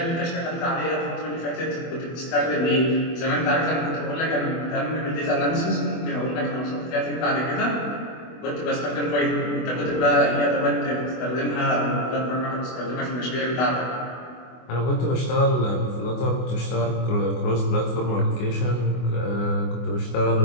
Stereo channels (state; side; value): late; right; 24 ms